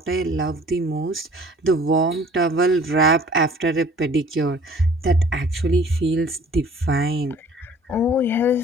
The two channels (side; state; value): both; normal; correlation 0.51